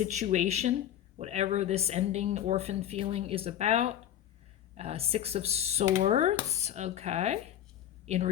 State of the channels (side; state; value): right; quieter; 11.1 dB